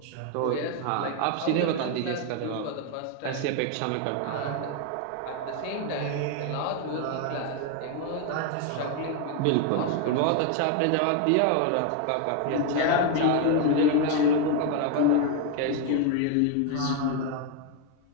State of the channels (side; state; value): both; different; correlation 0.01